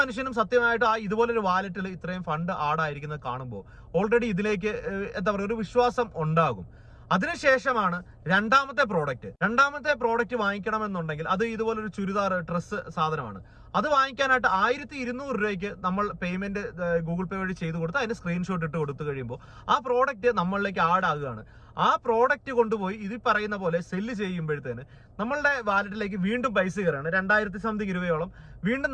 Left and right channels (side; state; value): both; identical; correlation 1.00